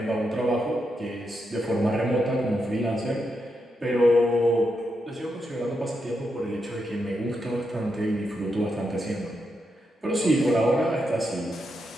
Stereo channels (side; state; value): both; normal; correlation 0.84